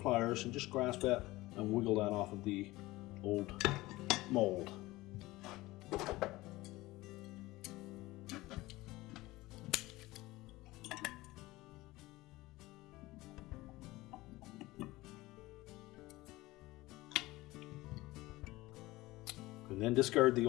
and just grasp that and wiggle that off of the old mold. And then discard the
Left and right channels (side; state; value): right; quieter; 19.3 dB